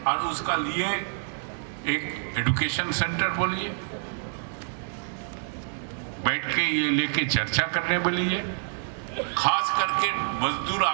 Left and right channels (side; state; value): left; silent; digital silence